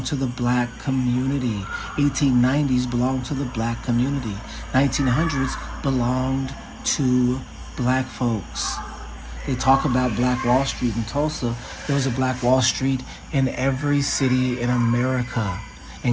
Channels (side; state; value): both; identical; correlation 1.00